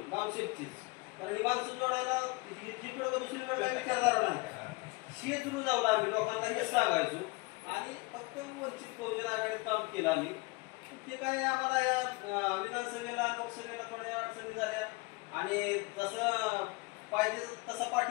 कामशेतचीच, कारण ही माणसं जोडायला जिकडं दुसरी वेळ विचारधारा नाही, हीच रुजवलं आम्ही लोकांना हेच सांगायचो आणि फक्त वंचित बहुजन आघाडीत काम केलं आम्ही. ते काय आम्हाला या विधानसभेला लोकसभेला थोड्या अडचणी झाल्या आणि जसं पाहिजे तसा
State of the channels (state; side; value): quieter; right; 26.1 dB